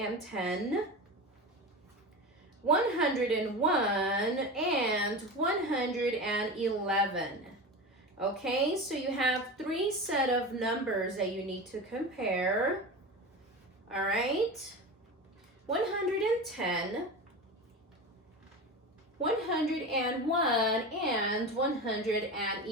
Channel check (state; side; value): normal; both; correlation 0.27